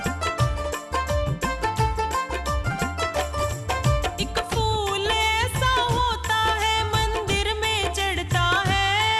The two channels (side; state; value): both; identical; correlation 1.00